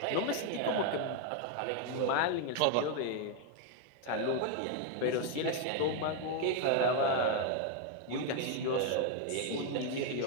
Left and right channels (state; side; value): different; both; correlation 0.01